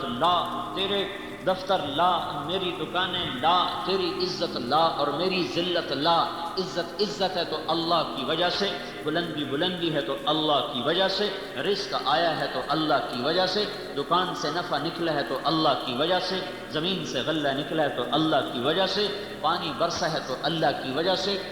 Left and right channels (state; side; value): identical; both; correlation 1.00